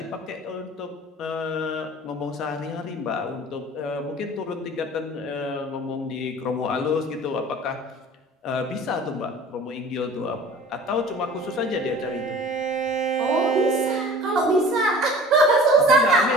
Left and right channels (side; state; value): both; normal; correlation 0.44